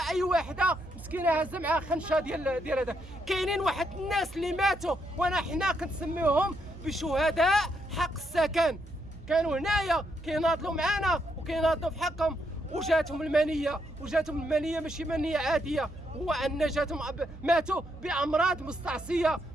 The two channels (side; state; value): right; noise; hum, 16 dB below the sound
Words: اي وحده مسكينه هازه معها خنشه ديال هذا. كاينين واحد الناس اللي ماتوا وانا حنا كنسميوهم بشهداء حق السكن، كانوا هنايا كيناضلوا معنا وكيناضلوا في حقهم، وجاتهم المنيه ماشي منيه عاديه، هو ان جاتهم ماتوا بامراض مستعصيه